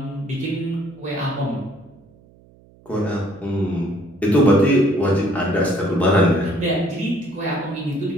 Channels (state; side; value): noise; right; hum, 28 dB below the sound